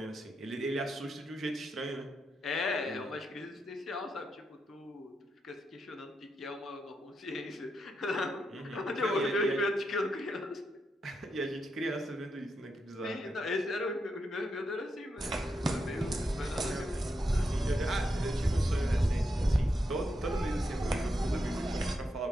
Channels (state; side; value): normal; both; correlation 0.84